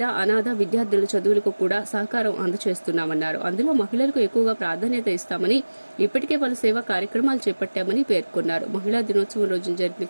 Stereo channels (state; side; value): inverted; both; correlation -1.00